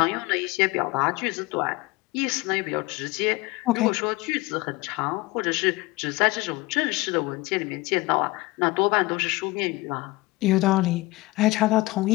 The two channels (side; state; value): right; quieter; 21.6 dB